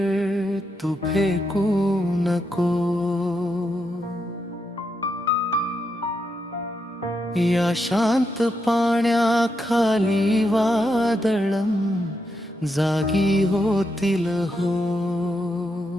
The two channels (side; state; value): both; normal; correlation 0.82